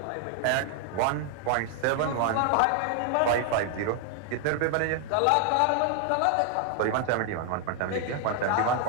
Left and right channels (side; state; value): both; different; correlation 0.00